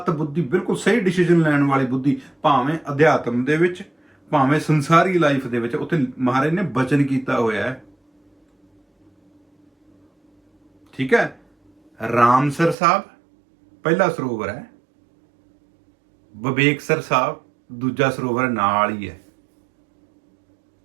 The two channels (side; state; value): left; drops out; at 12.8 s